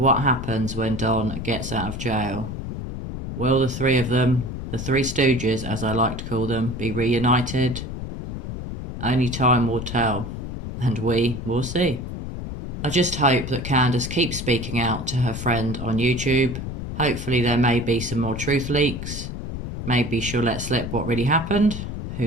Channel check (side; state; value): left; noise; rumble, 6 dB below the sound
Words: happens when Don gets out of jail? Will the three of them, the Three Stooges as I like to call them, be reunited? Only time will tell, and we will see. I just hope that Candace keeps speaking out to her friend on YouTube. Hopefully there may be some more truth leaks. Maybe she'll let slip what really happened.